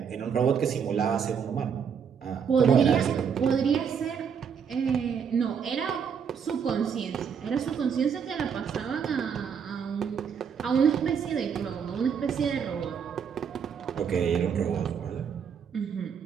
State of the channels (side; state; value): left; quieter; 7.0 dB